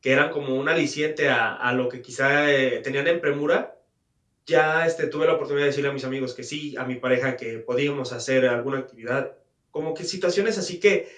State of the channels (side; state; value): both; identical; correlation 1.00